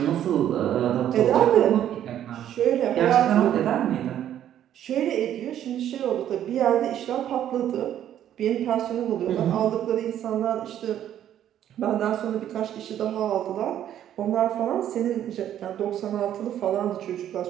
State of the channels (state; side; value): quieter; left; 10.9 dB